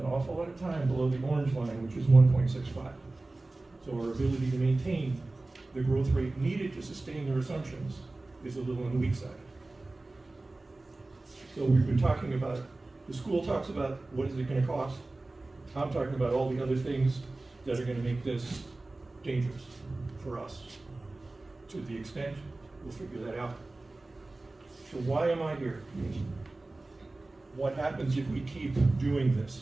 awful lot of time below the orange line, which is 1.65. So our ability to maintain the growth rate needed to sustain their assumptions is a little on the weak side. So we've been talking about, the school talks about what is it going to cost. I'm talking about all the other things that are going to make this dangerous for us. To the extent, we'll figure that out. So why am I here? What happens if we keep doing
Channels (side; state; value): left; quieter; 3.0 dB